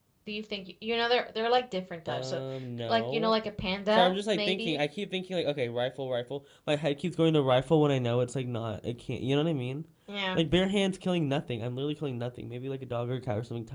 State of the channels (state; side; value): identical; both; correlation 1.00